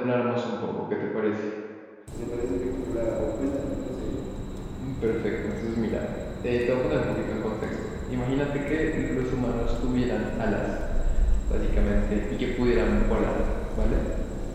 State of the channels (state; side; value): identical; both; correlation 1.00